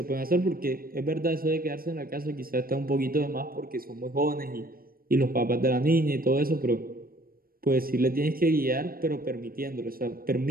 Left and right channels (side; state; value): left; late; 0.43 ms